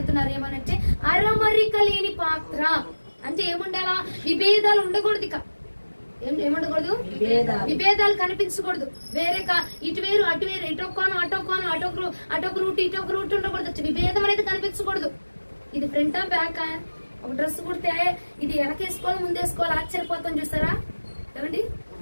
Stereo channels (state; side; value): inverted; both; correlation -1.00